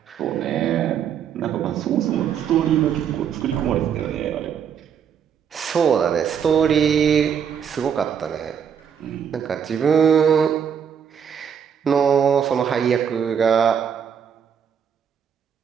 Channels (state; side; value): quieter; left; 7.9 dB